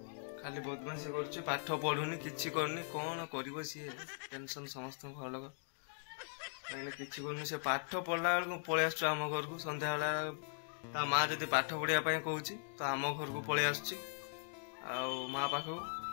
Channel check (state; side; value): silent; right; digital silence